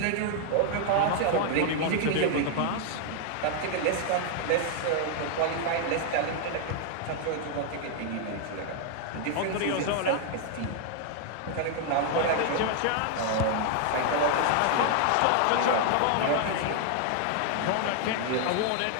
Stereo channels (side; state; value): both; different; correlation 0.00